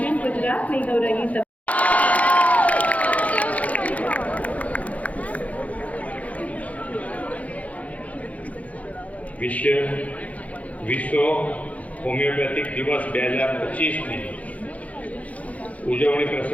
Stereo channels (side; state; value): right; late; 0.069 ms